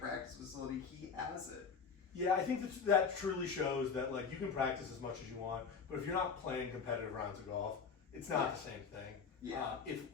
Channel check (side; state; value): right; quieter; 5.8 dB